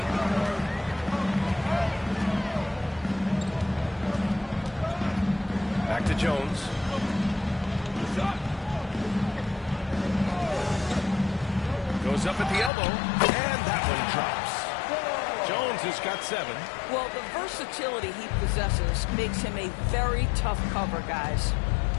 Back to Jones. Goes up at the elbow, and that one drops. Jones has got 7. Well, the versatility he possesses makes him a very tough cover, guys.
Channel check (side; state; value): right; drops out; at 12.7 s